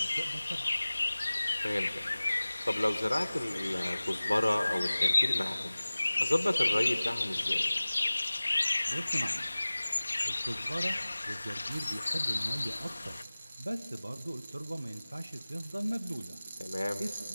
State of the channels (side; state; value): both; inverted; correlation -0.99